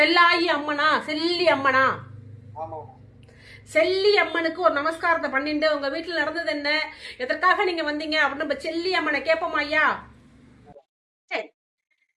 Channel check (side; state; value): both; identical; correlation 1.00